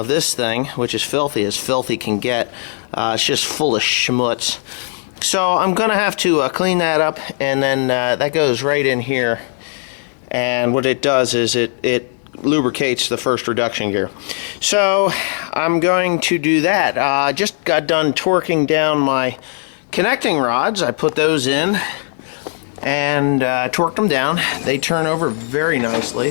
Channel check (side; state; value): right; silent; 68 dB below the other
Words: this thing, which is filthy as filthy can get. It's just full of schmutz. So I'm gonna have to clean that up, and then that goes right in here. And what it does is it lubricates the first reduction gear. So I'm going to do that. I just got done torquing down my connecting rods. I put those in and torqued them down. They turn over very nicely.